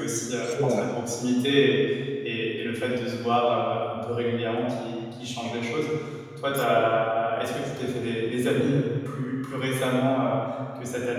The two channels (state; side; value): identical; both; correlation 1.00